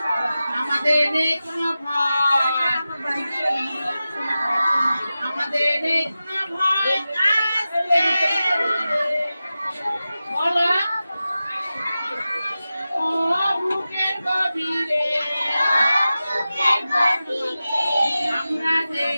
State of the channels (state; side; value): inverted; both; correlation -0.94